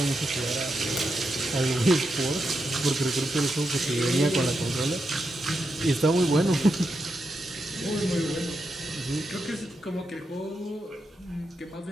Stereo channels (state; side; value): normal; both; correlation 0.85